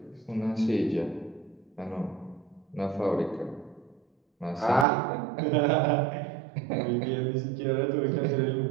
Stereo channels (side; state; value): left; drops out; at 4.9 s